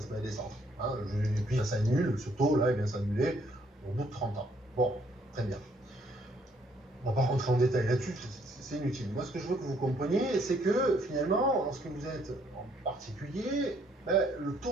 met à descendre. Hein, et puis ça s'annule, ce taux-là, il vient s'annuler au bout de 30 ans. Bon, très bien. On ne va pas rentrer en détail là-dessus, c'est inutile. Moi, ce que je veux que vous compreniez, c'est que finalement, lorsque vous êtes en particulier, le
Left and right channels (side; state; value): both; normal; correlation 0.67